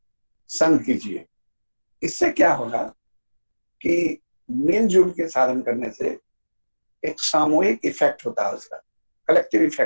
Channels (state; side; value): inverted; both; correlation -1.00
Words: संग कीजिए। इससे क्या होगा कि मिलजुल के साधन करने से एक सामूहिक इफेक्ट होता है, उसका कलेक्टिव